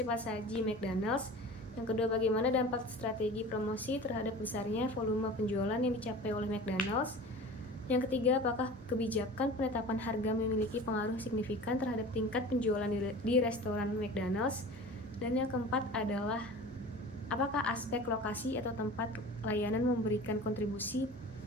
saji McDonald's. Yang kedua, bagaimana dampak strategi promosi terhadap besarnya volume penjualan yang dicapai oleh McDonald's. Yang ketiga, apakah kebijakan penetapan harga memiliki pengaruh signifikan terhadap tingkat penjualan di restoran McDonald's. Dan yang keempat adalah apakah aspek lokasi atau tempat layanan memberikan kontribusi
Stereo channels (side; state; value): both; normal; correlation 0.38